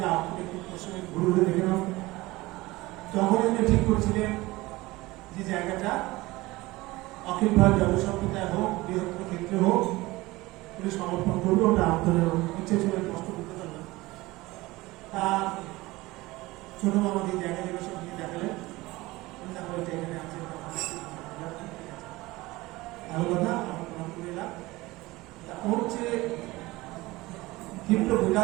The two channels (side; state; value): left; quieter; 20.2 dB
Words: একটু ঘুরে ঘুরে দেখে নাও। তখন উনি ঠিক করছিলেন যে জায়গাটা অখিল ভারত জনসম্প্রদায় হোক, বৃহত্তর ক্ষেত্রে হোক, উনি সমর্পণ করবে, ওটা আপনাদের ইচ্ছে ছিল, কষ্ট করতে পারবেন। তা ছোট মামাকে এই জায়গা জায়গা সব নিয়ে দেখালেন, তারপরে এটা এখানে আছে, ভালো কথা, আমার প্রণাম করে এলাম। ওর হচ্ছে তীব্র